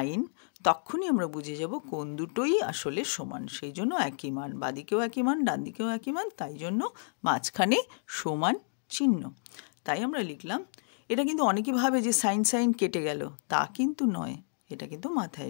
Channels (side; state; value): right; silent; 57 dB below the other